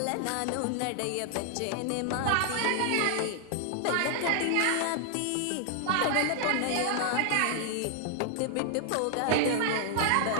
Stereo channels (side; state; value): both; different; correlation 0.00